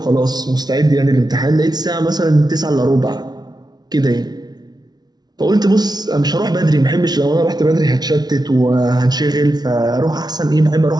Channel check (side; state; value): left; late; 0.19 ms